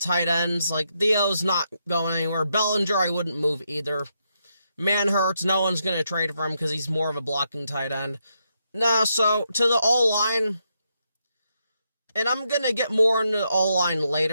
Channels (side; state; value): both; inverted; correlation -0.80